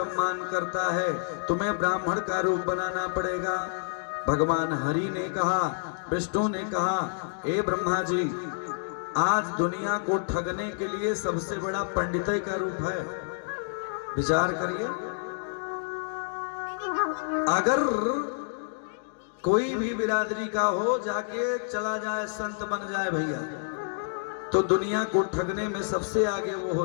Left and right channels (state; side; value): silent; right; digital silence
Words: करता है, तुम्हें ब्राह्मण का रूप बनाना पड़ेगा। भगवान हरि ने कहा, विष्णु ने कहा, ए ब्रह्मा जी, आज दुनिया को ठगने के लिए सबसे बड़ा पंडितई का रूप है। विचार करिए, अगर कोई भी बिरादरी का हो जाके चला जाए, संत बन जाए भैया, तो दुनिया को ठगने में सबसे आगे वो